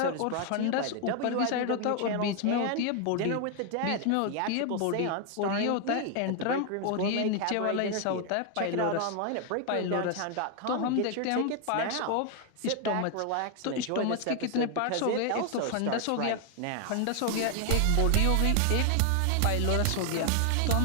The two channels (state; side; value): different; both; correlation 0.00